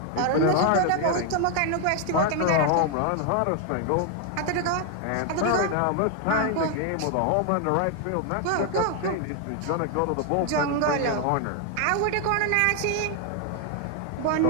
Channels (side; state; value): both; different; correlation 0.00